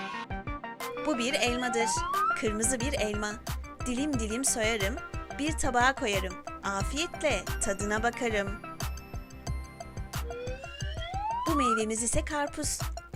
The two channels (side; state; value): both; identical; correlation 1.00